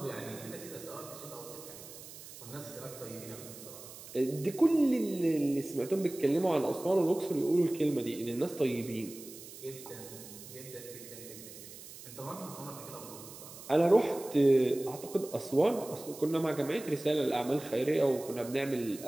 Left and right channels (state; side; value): noise; right; hiss, 15 dB below the sound